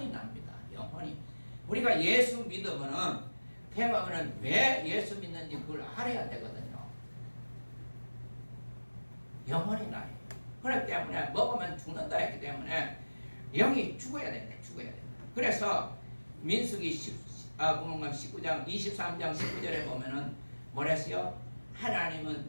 납니다. 영혼이. 우리가 예수 믿으면은 대박은 왜 예수 믿는지 그걸 알아야 되거든요. 영혼이 나요. 그렇기 때문에 먹으면 죽는다 했기 때문에 영이 죽어야 됩니다. 죽어야 됩니다. 그래서 민수기 19장 23장 19절에 보면은 뭐랬어요?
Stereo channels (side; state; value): both; inverted; correlation -1.00